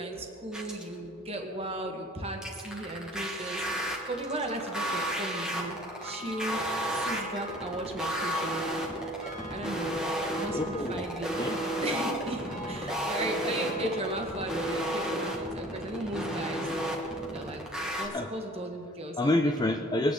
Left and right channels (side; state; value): both; normal; correlation 0.50